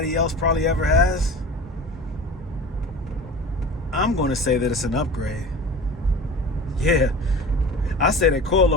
else probably ever has. I'm going to say that it's an upgrade. Yeah, I say that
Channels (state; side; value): normal; both; correlation 0.36